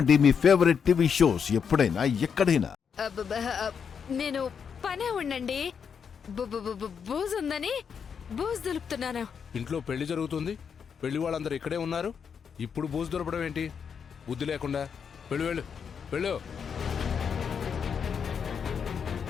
మీ ఫేవరెట్ టీవీ షోస్ ఎప్పుడైనా ఎక్కడైనా. నేను పనే ఉండండి. బూజు ఉందని బూజు దులుపుతున్నాను. ఇంట్లో పెళ్లి జరుగుతుంది, పెళ్లి వాళ్ళందరూ ఇక్కడే ఉన్నారు. ఇప్పుడు బూజు దొరకడం ఏంటి? బుద్ధి లేకుండా. వెళ్ళు వెళ్ళు వెళ్ళు.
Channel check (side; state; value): right; quieter; 6.8 dB